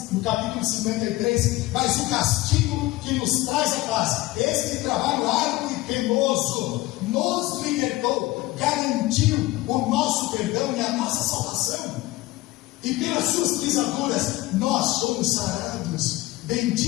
no capítulo 53, mas o castigo que nos traz a paz, este trabalho árduo e penoso, nos libertou, garantiu o nosso perdão e a nossa salvação. E pelas suas pisaduras nós somos sarados.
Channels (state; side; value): quieter; right; 19.1 dB